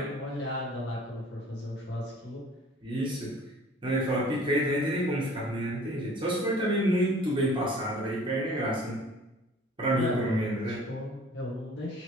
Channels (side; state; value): both; normal; correlation 0.50